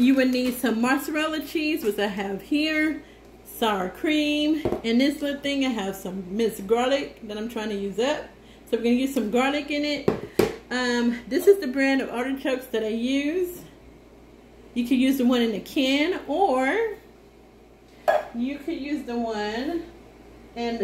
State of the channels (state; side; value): identical; both; correlation 1.00